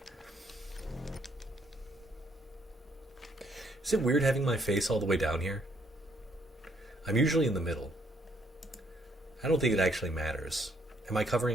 Is it weird having my face all the way down here? I'm usually in the middle. I don't think it actually matters. Am I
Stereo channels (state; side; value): normal; both; correlation 0.69